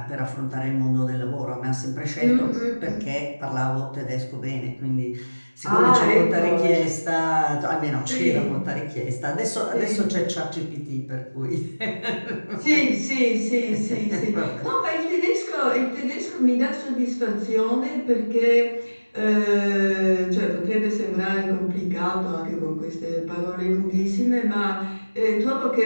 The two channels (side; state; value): both; inverted; correlation -1.00